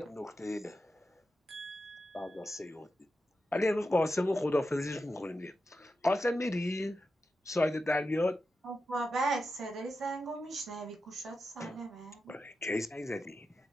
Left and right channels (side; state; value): both; normal; correlation 0.90